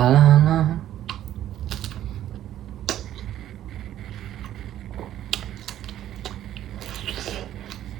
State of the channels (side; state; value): left; quieter; 12.0 dB